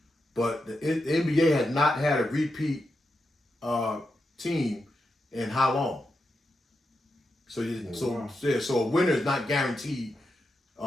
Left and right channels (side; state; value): both; normal; correlation 0.87